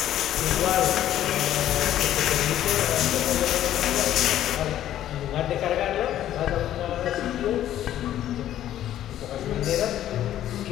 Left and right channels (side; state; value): right; quieter; 12.1 dB